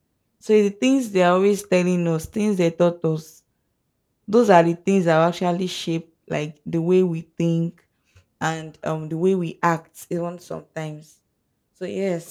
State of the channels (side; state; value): both; identical; correlation 1.00